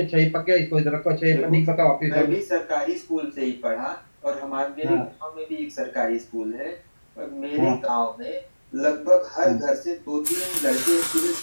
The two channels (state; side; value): inverted; both; correlation -1.00